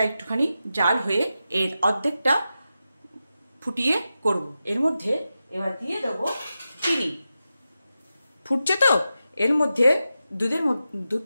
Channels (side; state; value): both; inverted; correlation -0.91